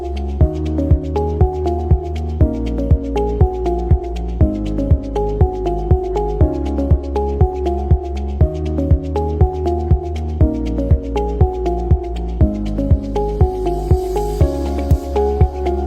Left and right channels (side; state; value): both; identical; correlation 1.00